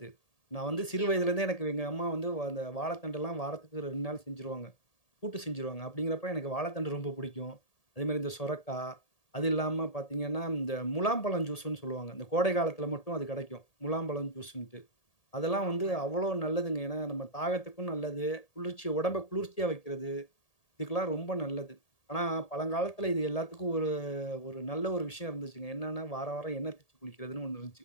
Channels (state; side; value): late; right; 1.8 ms